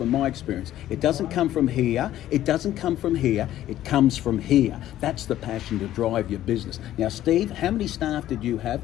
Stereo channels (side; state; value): right; quieter; 13.0 dB